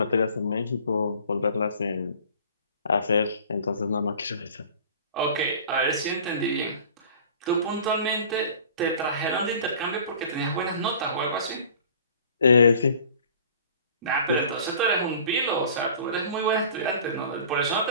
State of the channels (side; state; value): both; inverted; correlation -0.46